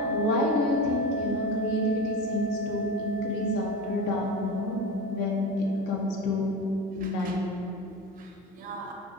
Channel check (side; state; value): both; normal; correlation 0.26